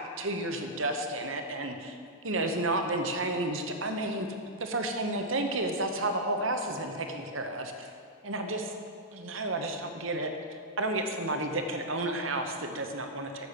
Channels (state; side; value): normal; both; correlation -0.09